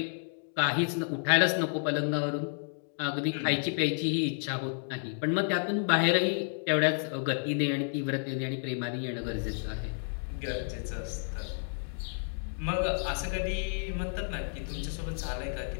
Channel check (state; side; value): silent; right; digital silence